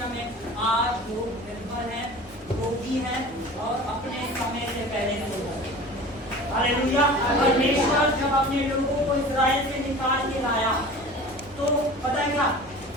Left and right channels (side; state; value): both; normal; correlation 0.39